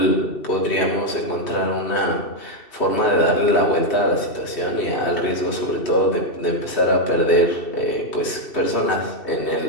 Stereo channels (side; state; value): right; late; 2.7 ms